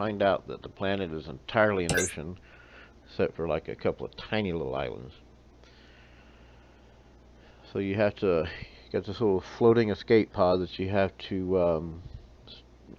out that the planet is entirely an ocean, except for like a couple of tiny little islands. So you have to get this little floating escape pod that you have to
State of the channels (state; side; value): identical; both; correlation 1.00